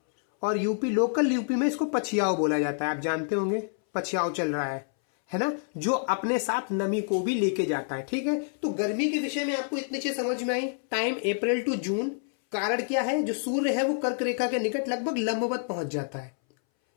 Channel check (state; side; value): silent; right; 60 dB below the other